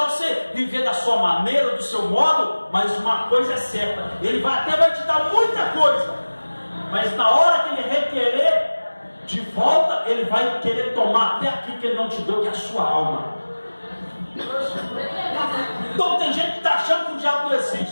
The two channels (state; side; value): inverted; both; correlation -1.00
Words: você viver da sua maneira, do seu modo. Mas uma coisa é certa, ele até vai te dar muita coisa, mas na hora que ele requerer de volta, ele vai querer tomar até aquilo que ele não te deu, que é a sua alma. Então tem gente que está achando que o diabo não